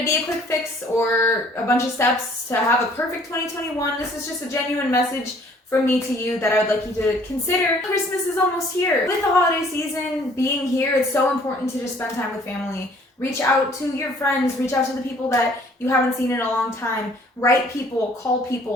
be a quick fix or a bunch of steps to have a perfect 2021. This is just a genuine message from me to you that I would like you to consider. Christmas is almost here. With the holiday season being here, it's so important to just spend time with family. Reach out to your friends, reach out to the people that you haven't seen in a long time. Write people, call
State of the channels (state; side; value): normal; both; correlation 0.57